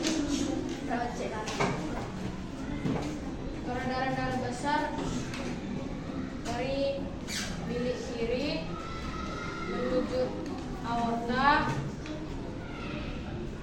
perawat cek. Peredaran darah besar dari bilik kiri menuju aorta,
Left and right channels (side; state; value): both; identical; correlation 1.00